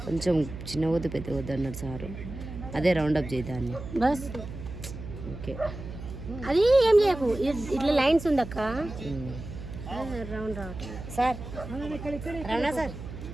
కొంచెం చిన్న వద్దు పెద్ద వద్దు అన్నారు సారు. అదే రౌండప్ చేద్దాన్ని. బస్ ఓకే, అది ఏం చేయకు, ఇట్లా లైన్స్ ఉందక్క. రౌండ్ రావట్లేదు సార్. రమణ సార్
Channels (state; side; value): noise; right; hum, 10 dB below the sound